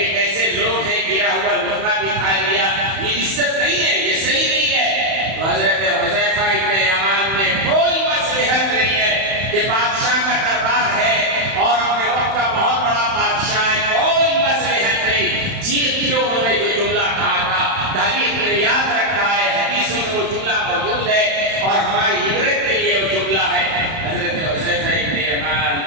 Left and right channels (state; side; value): late; left; 31 ms